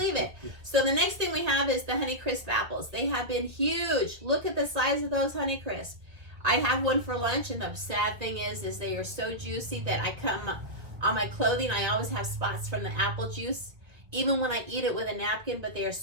it. So the next thing we have is the Honeycrisp apples. They have been huge. Look at the size of those Honeycrisp. I have one for lunch, and the sad thing is they are so juicy that I come on my clothing, I always have spots from the apple juice, even when I eat it with a napkin, but they are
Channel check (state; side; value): late; left; 1.9 ms